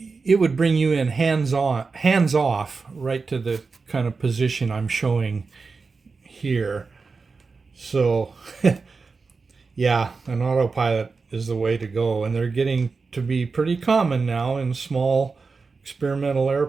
would bring you in hands off right to the kind of position I'm showing here. So yeah, an autopilot is the way to go, and they're getting to be pretty common now in small experimental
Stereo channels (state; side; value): quieter; left; 4.5 dB